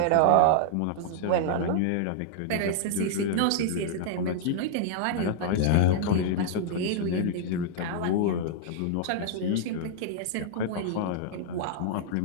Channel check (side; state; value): both; different; correlation -0.01